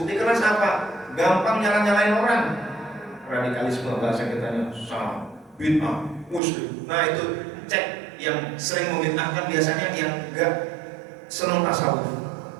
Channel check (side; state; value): left; drops out; at 6.4 s